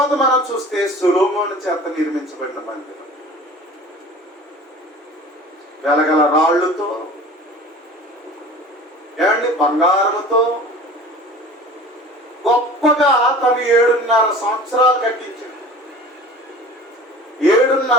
మనం చూస్తే సొలొమోను చేత నిర్మించబడిన మందిరం వెలగల రాళ్లతో, ఏమండి, బంగారముతో గొప్పగా తను 7.5 సంవత్సరాలు కట్టించాడు.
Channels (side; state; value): both; normal; correlation 0.42